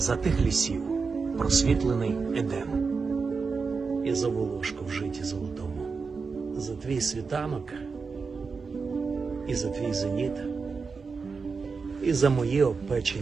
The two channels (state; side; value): quieter; left; 4.9 dB